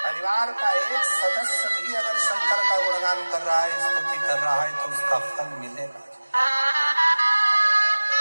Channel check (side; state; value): both; inverted; correlation -1.00